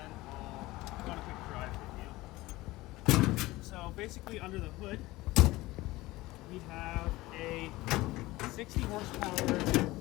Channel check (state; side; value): quieter; right; 19.2 dB